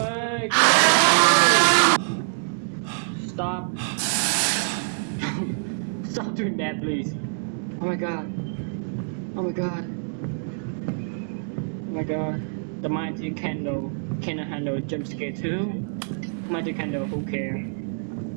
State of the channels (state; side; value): silent; left; digital silence